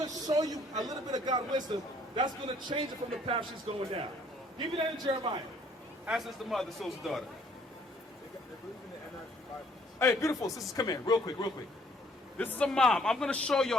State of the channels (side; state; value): both; normal; correlation 0.61